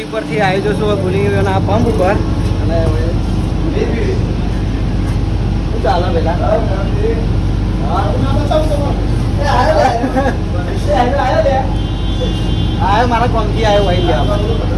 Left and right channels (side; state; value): both; identical; correlation 1.00